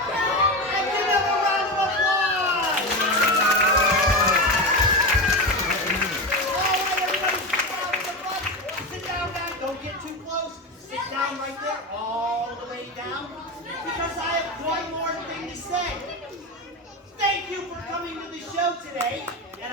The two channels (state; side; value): normal; both; correlation 0.19